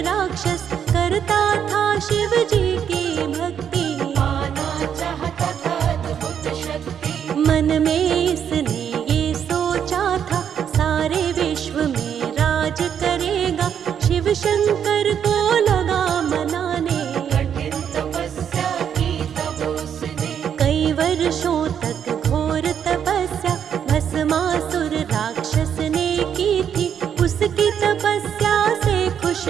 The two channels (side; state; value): left; quieter; 8.4 dB